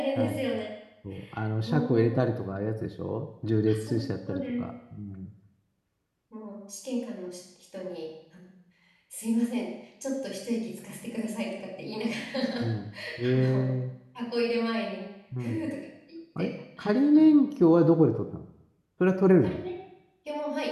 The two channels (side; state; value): both; identical; correlation 1.00